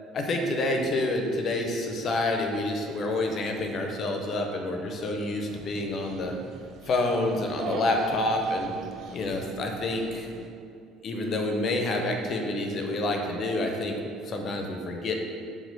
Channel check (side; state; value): both; normal; correlation 0.58